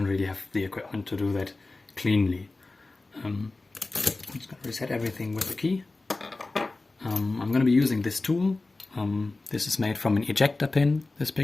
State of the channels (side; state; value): right; quieter; 3.3 dB